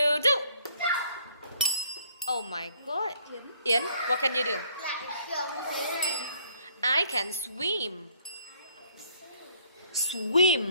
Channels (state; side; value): inverted; both; correlation -0.63